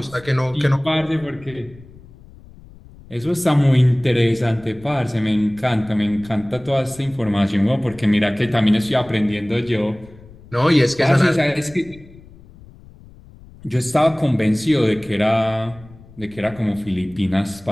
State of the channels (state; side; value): noise; left; rumble, 22 dB below the sound